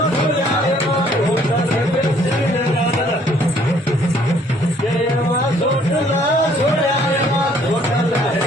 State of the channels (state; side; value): normal; both; correlation 0.62